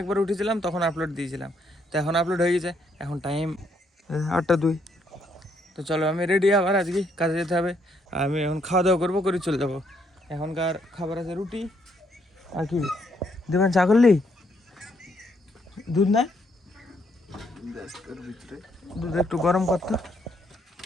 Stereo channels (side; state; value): both; normal; correlation 0.72